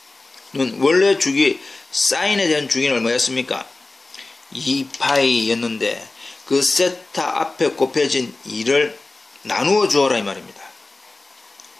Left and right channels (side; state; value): right; quieter; 3.3 dB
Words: 원래 주기 사인에 대한 주기는 얼마였습니까? 2파이였는데 그 세타 앞에 곱해진 2를 나누어 주어라 이 말입니다.